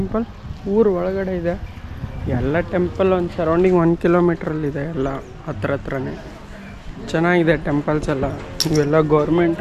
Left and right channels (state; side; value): identical; both; correlation 1.00